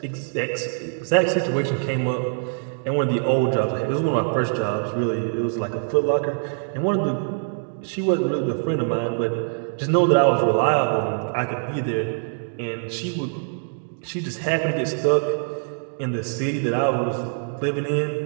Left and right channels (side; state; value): left; silent; digital silence